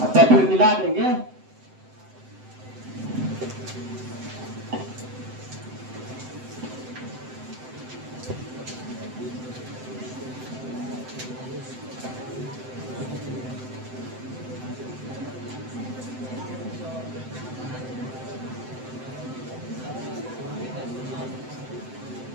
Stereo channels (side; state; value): left; late; 7.8 ms